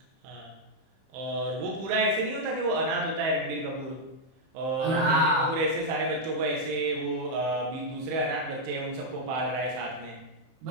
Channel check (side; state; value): left; late; 31 ms